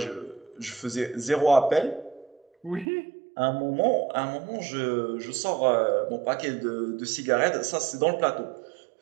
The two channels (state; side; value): drops out; left; at 2.9 s